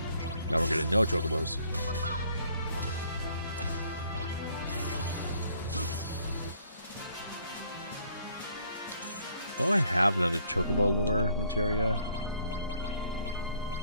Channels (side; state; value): both; inverted; correlation -0.64